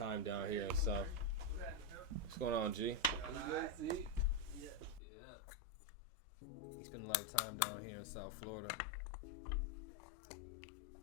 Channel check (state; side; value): drops out; right; at 5.0 s